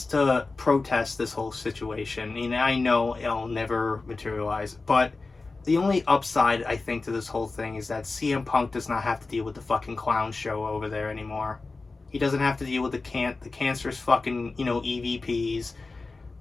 to protest this whole situation. I know it'll never materialize, but the only upside I think to this whole thing is that CM Punk does not have to deal with the fucking clown show over there anymore. He doesn't have to deal with the cancerous fucking, you know, EVPs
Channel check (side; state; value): right; quieter; 3.7 dB